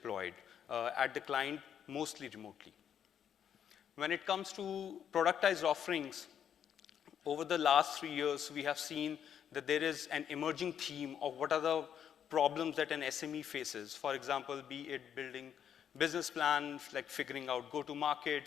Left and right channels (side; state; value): right; quieter; 8.8 dB